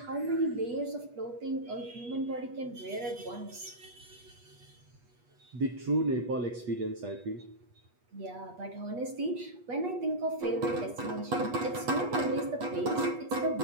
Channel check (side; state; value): left; late; 8.3 ms